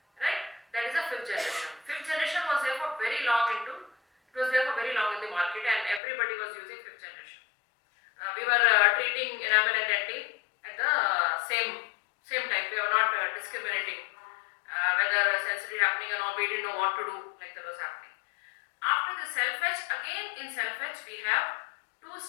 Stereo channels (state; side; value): drops out; right; at 6.0 s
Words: right? That is the fifth generation. Fifth generation was there for very long into. It was there for very long in the market, and everybody was using fifth generation. We were treating enamel and dentin at the same time. We were not discriminating whether sensitivity happening or not. We didn't know what to do, like that was happening. After the self-etch, again in self-etch we have